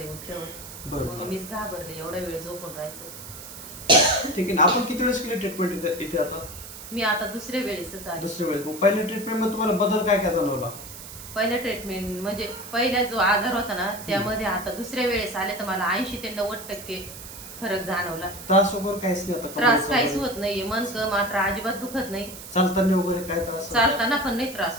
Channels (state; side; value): noise; right; hiss, 13 dB below the sound